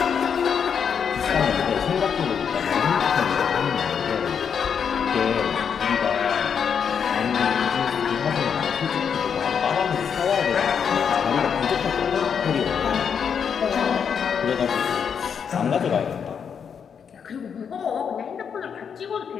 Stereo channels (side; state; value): right; quieter; 7.1 dB